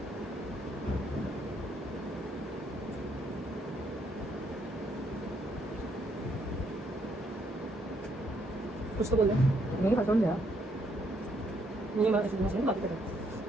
कुछ तो बोल दे. नहीं खाता हूं यार. नहीं मैं ऐसे बात कर रहा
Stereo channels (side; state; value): both; normal; correlation 0.72